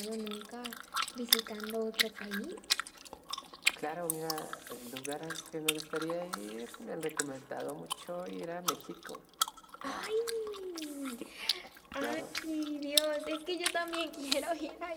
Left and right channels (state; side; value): identical; both; correlation 1.00